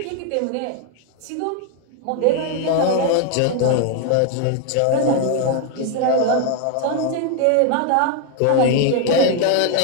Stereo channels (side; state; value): both; different; correlation 0.01